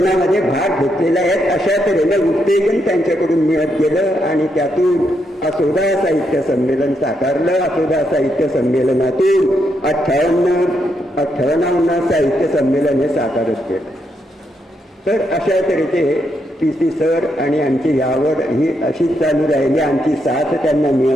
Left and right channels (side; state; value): both; normal; correlation 0.79